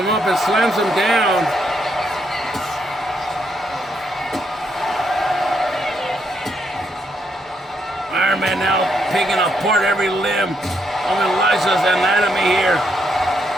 up and slams him down. picking apart every limb of Elijah's anatomy here.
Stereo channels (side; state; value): both; normal; correlation 0.77